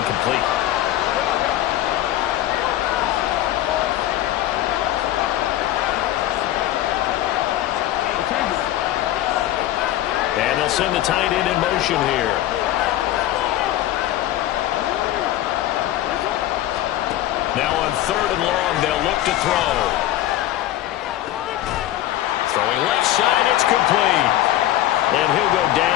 And they'll send the tight end in motion here. Now on 3rd and long, they'll look to throw. Throwing left side, it's complete. And he'll go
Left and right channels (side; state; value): right; quieter; 13.8 dB